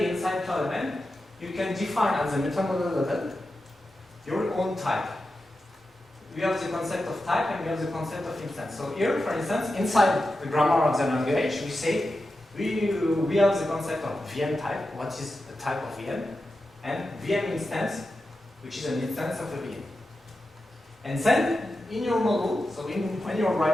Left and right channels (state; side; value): normal; both; correlation 0.91